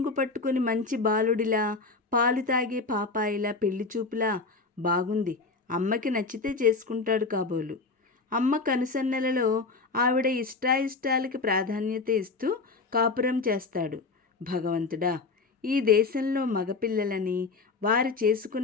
పట్టుకుని మంచి బాలుడిలా, పాలు తాగే పాపాయిలా, పెళ్లి చూపులా బాగుంది. అమ్మకి నచ్చితే చేసుకుంటాడు కాబోలు. అమ్మ కనుసన్నలలో ఆవిడ ఇష్టాయిష్టాలకి ప్రాధాన్యత ఇస్తూ కాపురం చేస్తాడు. భగవంతుడా, ఈ దేశంలో మగపిల్లలని, వారు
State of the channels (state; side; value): quieter; right; 4.1 dB